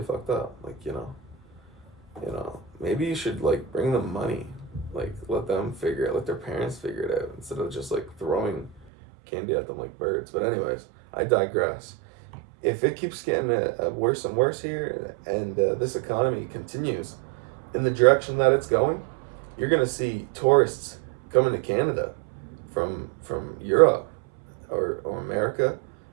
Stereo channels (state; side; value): drops out; left; at 8.8 s